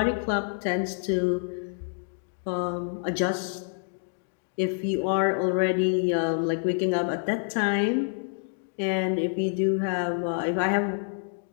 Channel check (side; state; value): right; silent; digital silence